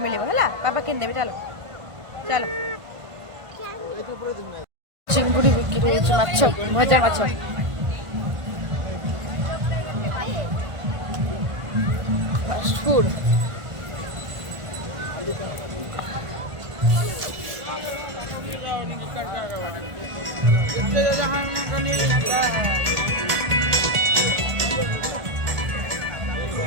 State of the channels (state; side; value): late; left; 1.5 ms